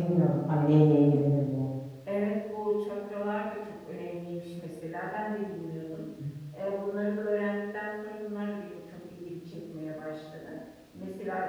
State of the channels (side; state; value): both; identical; correlation 1.00